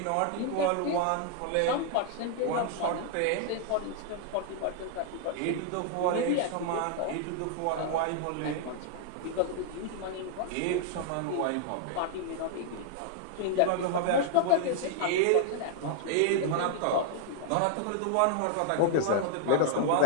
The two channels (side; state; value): both; different; correlation 0.00